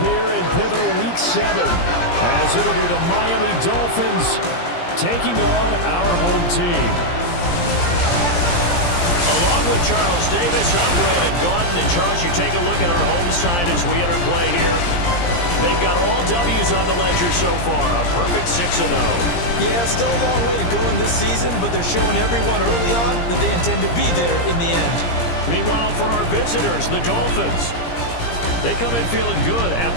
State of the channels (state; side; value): late; right; 17 ms